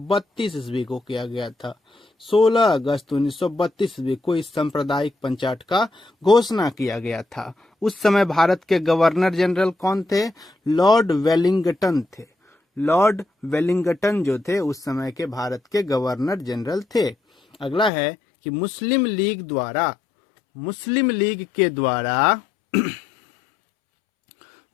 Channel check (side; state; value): right; drops out; at 17.9 s